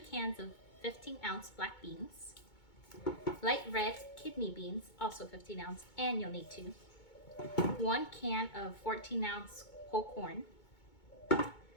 cans of 15-ounce black beans, light red kidney beans, also 15 ounce, and you'll need 2, 1 can of 14-ounce whole corn,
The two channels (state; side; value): late; right; 2.2 ms